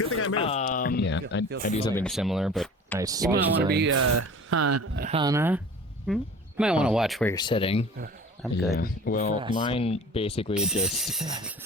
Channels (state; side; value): normal; both; correlation 0.42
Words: thing I moved. Yeah, I do something similar, but I You might want to be, Hannah. Hmm? You might want to watch where you're sitting. I'm Yeah. good. Well, mine basically just